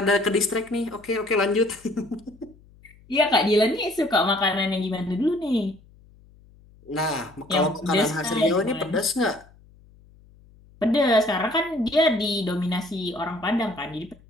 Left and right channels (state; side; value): noise; left; hum, 27 dB below the sound